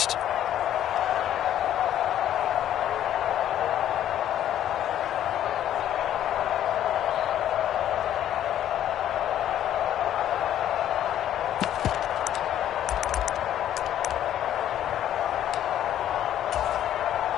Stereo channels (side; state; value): right; quieter; 11.3 dB